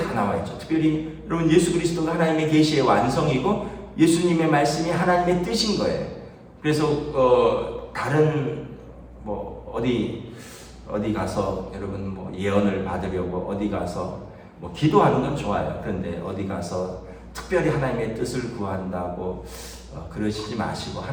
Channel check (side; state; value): both; identical; correlation 1.00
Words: 나와 있죠. 특별히 여러분, 예수 그리스도가 하나님의 계시의 완성이고 예수님의 말씀이 하나님의 뜻인 거예요. 그래서 다른 뭐 어디 가서 여러분 뭐 예언을 받으려고 어디 가서 뭐 기도하는 건 좋아요. 그런데 어디 가서 특별히 하나님의 뜻을 구한다고 그러시지 마시고